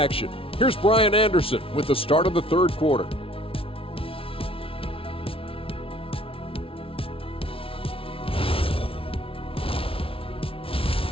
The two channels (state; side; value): late; right; 0.26 ms